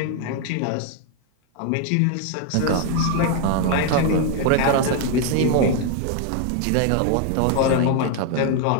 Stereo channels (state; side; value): different; both; correlation 0.01